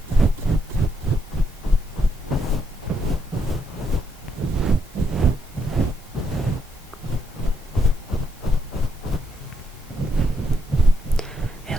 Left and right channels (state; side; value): normal; both; correlation 0.77